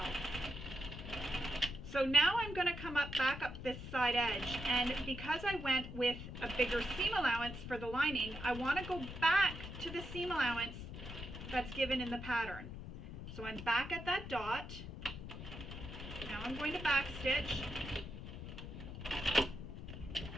So now I'm going to come back up this side edge, and because I went with a bigger seam allowance for the lining, I want to go back to the seam allowance that's given in the pattern. So I'm back at that dot. Now I'm going to back stitch,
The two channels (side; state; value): left; noise; rumble, 9 dB below the sound